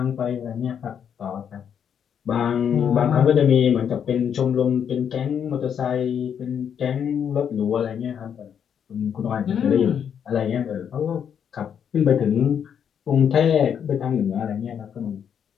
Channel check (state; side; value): quieter; right; 8.1 dB